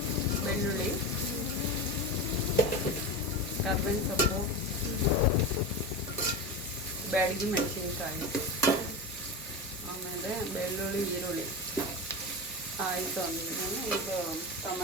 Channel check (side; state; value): both; normal; correlation 0.22